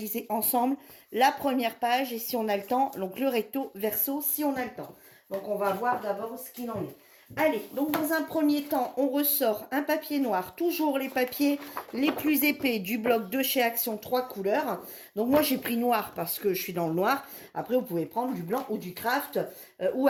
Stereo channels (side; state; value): both; identical; correlation 1.00